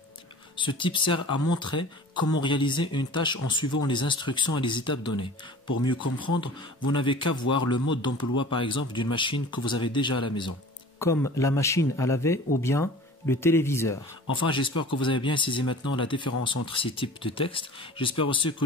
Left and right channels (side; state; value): both; normal; correlation 0.42